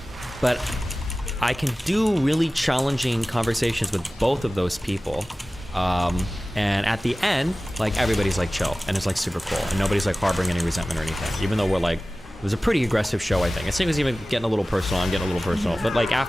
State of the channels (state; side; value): normal; both; correlation 0.97